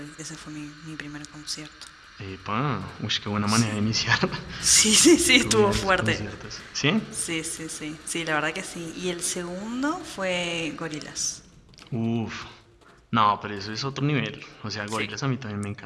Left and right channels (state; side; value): identical; both; correlation 1.00